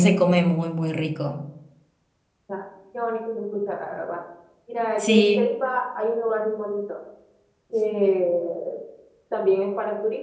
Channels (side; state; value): both; identical; correlation 1.00